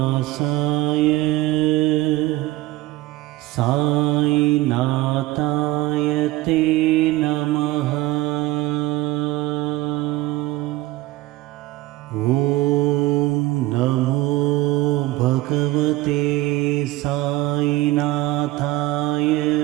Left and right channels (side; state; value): left; quieter; 17.4 dB